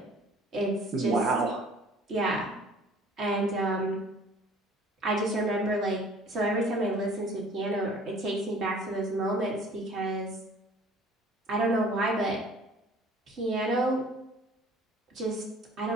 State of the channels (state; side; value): normal; both; correlation 0.51